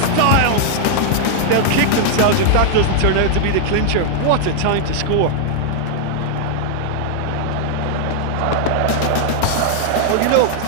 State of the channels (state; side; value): different; both; correlation 0.00